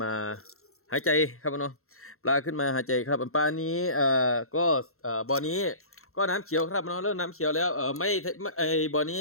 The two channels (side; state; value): right; late; 0.63 ms